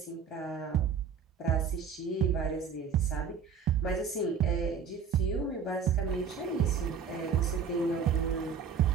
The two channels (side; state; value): left; quieter; 6.5 dB